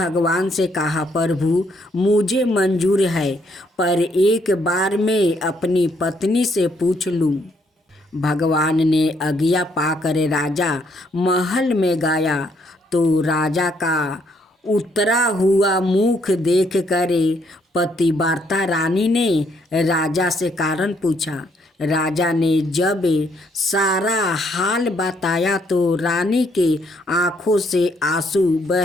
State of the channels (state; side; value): normal; both; correlation 0.71